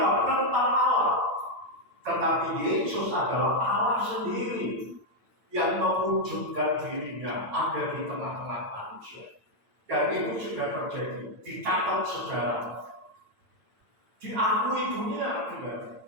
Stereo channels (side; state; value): left; late; 8.8 ms